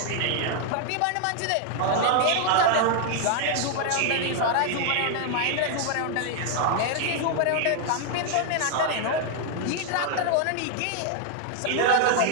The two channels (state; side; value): different; both; correlation 0.00